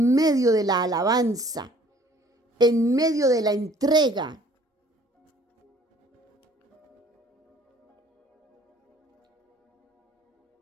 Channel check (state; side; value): normal; both; correlation 0.56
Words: medio de la alabanza, en medio de la entrega.